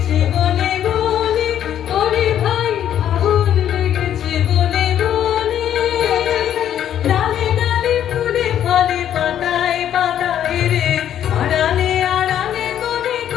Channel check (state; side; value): quieter; right; 10.4 dB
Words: বনে বনে, ওরে ভাই আগুন লেগেছে বনে বনে। ডালে ডালে ফুলে ফলে পাতায় পাতায় রে, আড়ালে আড়ালে কোণে